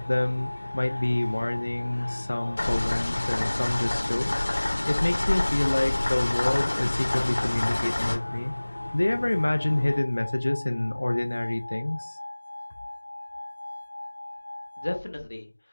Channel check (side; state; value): both; inverted; correlation -1.00